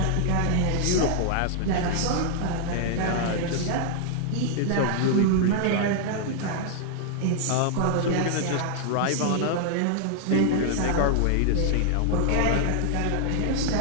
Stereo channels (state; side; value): different; both; correlation -0.01